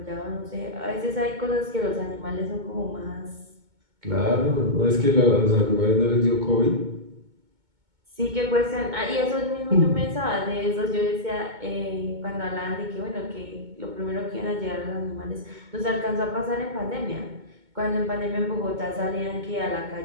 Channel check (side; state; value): left; late; 2.2 ms